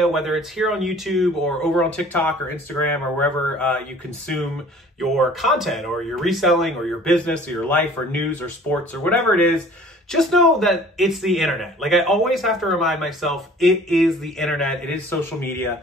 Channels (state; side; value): normal; both; correlation 0.49